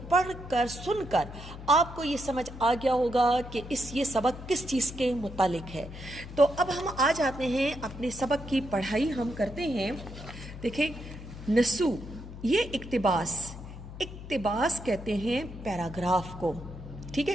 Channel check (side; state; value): left; noise; hum, 12 dB below the sound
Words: پڑھ کر سن کر آپ کو یہ سمجھ آ گیا ہوگا کہ یہ سبق کس چیز کے متعلق ہے۔ تو اب ہم آ جاتے ہیں اپنے سبق کی پڑھائی ہم کرتے ہیں۔ دیکھیں، نصوص، یہ اقتباس کہتے ہیں پیراگراف کو، ٹھیک